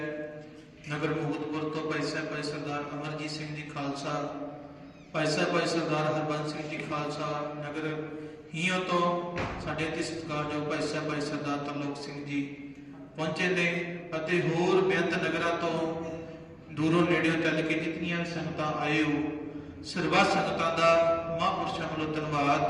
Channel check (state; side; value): identical; both; correlation 1.00